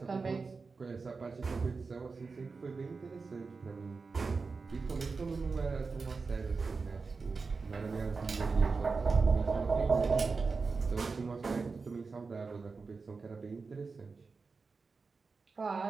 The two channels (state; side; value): quieter; left; 4.5 dB